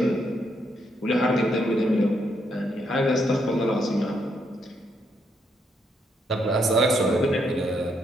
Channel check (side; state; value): both; normal; correlation 0.76